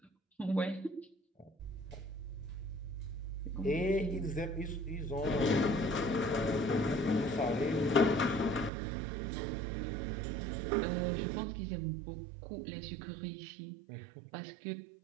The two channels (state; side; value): drops out; left; at 8.7 s